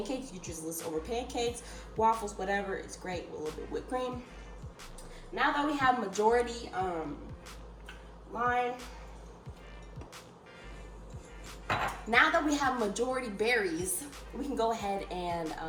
You just list over pancakes, waffles, whatever. It's great with a little bit of whipped cream. Now that we have majority now that we have majority berries, we can go ahead and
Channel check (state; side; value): identical; both; correlation 1.00